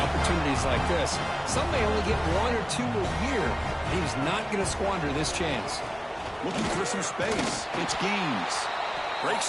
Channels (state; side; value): identical; both; correlation 1.00